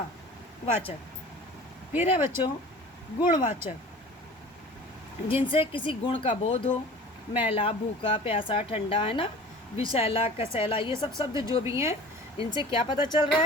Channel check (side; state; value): both; normal; correlation 0.41